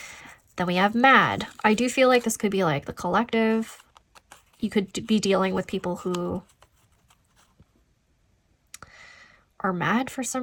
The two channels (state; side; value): identical; both; correlation 1.00